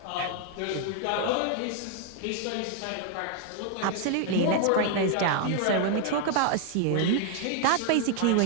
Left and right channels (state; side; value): different; both; correlation 0.00